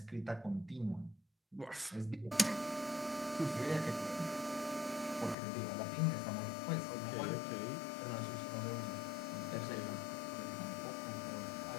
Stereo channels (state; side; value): drops out; right; at 5.4 s